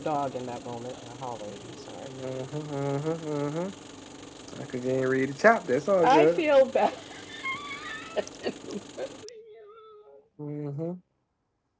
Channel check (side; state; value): both; identical; correlation 1.00